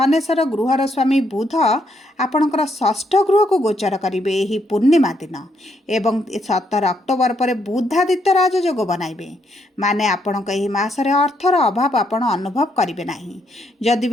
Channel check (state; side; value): normal; both; correlation 0.75